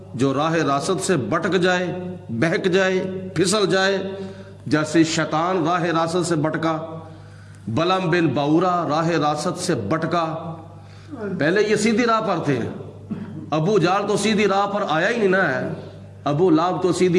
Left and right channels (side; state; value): both; identical; correlation 1.00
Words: جو راہ راست سے بھٹک جائے، بہک جائے، پھسل جائے، جیسے شیطان راہ راست سے بھٹکا، بلم بن باورا راہ راست سے بھٹکا۔ پہلے یہ سیدھی راہ پر تھے، ابو جہل تو سیدھی راہ پر آیا ہی نہیں نا ہے، ابو لہب تو